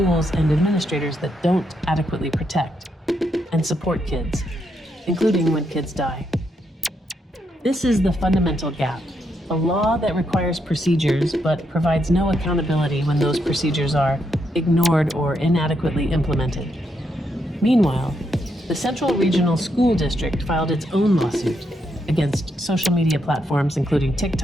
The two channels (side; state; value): both; normal; correlation 0.79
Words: and administrators that don't adequately protect and support kids, including when kids die. This is the fundamental gap. A law that requires procedures but provides no accountability when those procedures are ignored or inadequately implemented. Meanwhile, the Central Regional School District filed its own lawsuit against social media platforms including